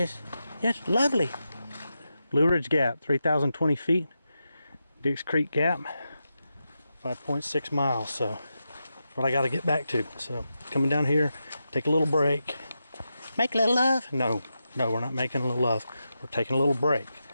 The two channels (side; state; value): both; inverted; correlation -0.88